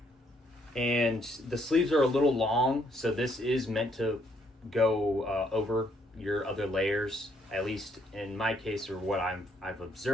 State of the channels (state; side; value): normal; both; correlation 0.70